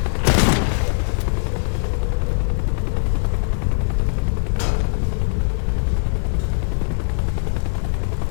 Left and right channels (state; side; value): silent; right; digital silence